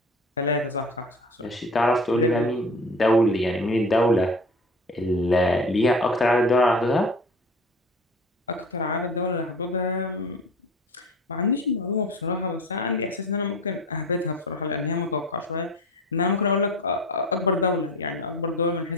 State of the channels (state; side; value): normal; both; correlation 0.36